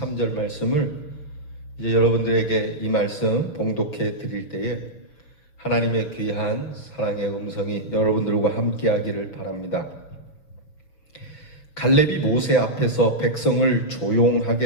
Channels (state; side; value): late; right; 6.4 ms